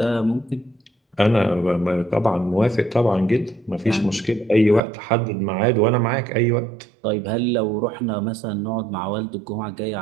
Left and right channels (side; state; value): left; drops out; at 4.8 s